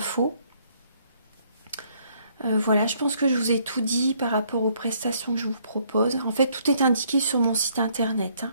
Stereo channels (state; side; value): inverted; both; correlation -0.67